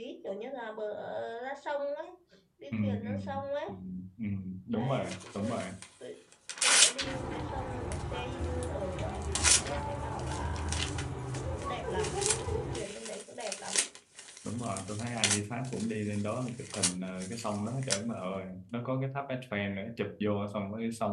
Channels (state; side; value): identical; both; correlation 1.00